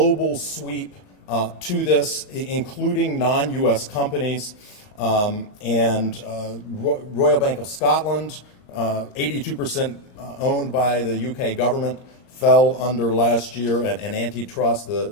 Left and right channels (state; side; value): late; right; 21 ms